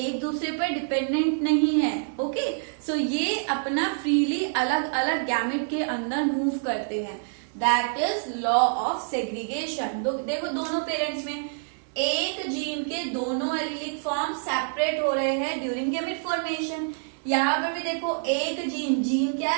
दूसरे पर डिपेंडेंट नहीं है, ओके। सो ये अपना फ्रीली अलग अलग गैमेट के अंदर मूव करते हैं, that is law of segregation. देखो दोनों पेरेंट्स में एक जीन के दोनों एलीलिक फॉर्म सेपरेट हो रहे हैं ड्यूरिंग गैमेट फॉर्मेशन, यहाँ पर भी देखो एक जीन, जीन क्या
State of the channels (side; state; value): left; silent; digital silence